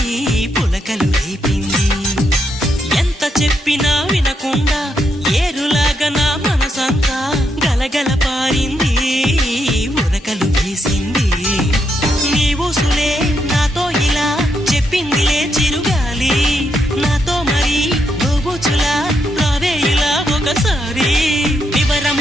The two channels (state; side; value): normal; both; correlation 0.80